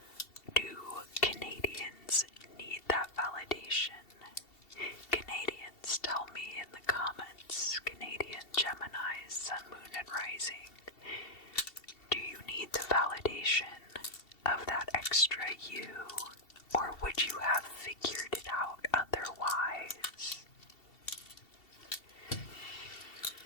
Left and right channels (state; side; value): late; right; 2.7 ms